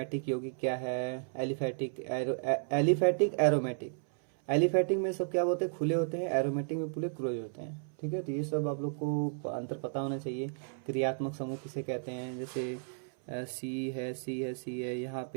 यौगिक क्या है, एलिफेटिक एरोमेटिक। एलिफेटिक में सब क्या होते हैं, खुले होते हैं, एरोमेटिक में पूरे क्लोज होते हैं। ठीक है, तो ये सब आप लोग को अंतर पता होना चाहिए। क्रियात्मक समूह किसे कहते हैं, जैसे C है, यहाँ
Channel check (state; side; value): silent; left; 56 dB below the other